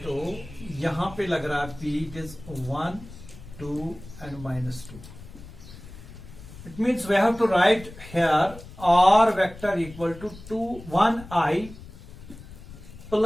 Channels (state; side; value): noise; left; rumble, 16 dB below the sound